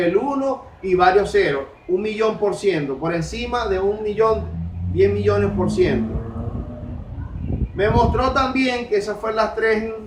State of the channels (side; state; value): both; identical; correlation 1.00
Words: 1 y varios ceros, 1.000.000%, por encima de 1.000.000, 10 millones%. Me mostró también que esas fueron las tres